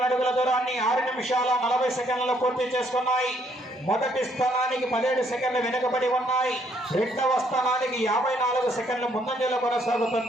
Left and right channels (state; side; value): normal; both; correlation 0.69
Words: అడుగుల దూరాన్ని 6 నిమిషాల 40 సెకండ్లలో పూర్తి చేసుకున్నాయి. మొదటి స్థానానికి 17 సెకండ్లు వెనుకబడి ఉన్నాయి. 2వ స్థానానికి 54 సెకండ్లు ముందంజలో